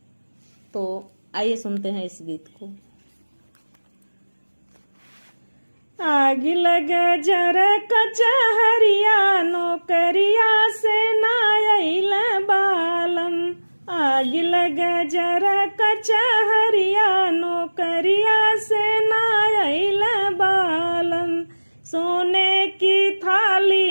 तो आइए सुनते हैं इस गीत को। आग लगे जरा कचहरिया नौकरिया से नायल बालम। आग लगे जरा कचहरिया नौकरिया से नायल बालम। सोने की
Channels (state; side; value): inverted; both; correlation -1.00